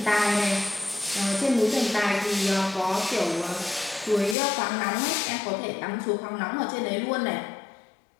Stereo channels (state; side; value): drops out; right; at 4.4 s